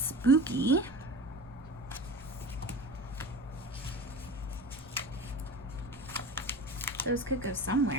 Those could go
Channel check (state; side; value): noise; right; rumble, 22 dB below the sound